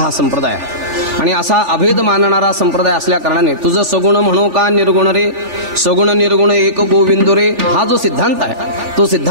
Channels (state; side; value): late; left; 3.4 ms